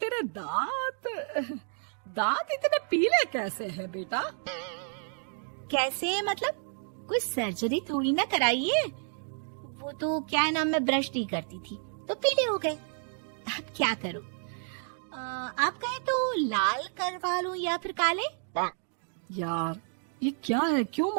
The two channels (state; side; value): silent; left; 57 dB below the other